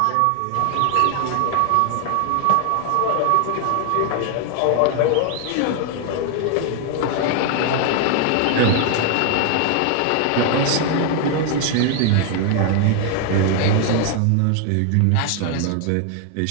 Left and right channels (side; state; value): both; different; correlation 0.00